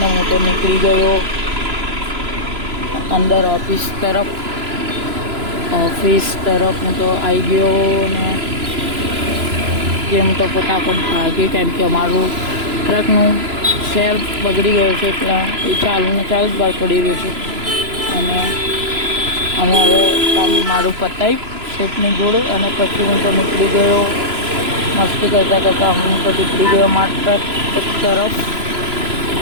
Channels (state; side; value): late; left; 3.0 ms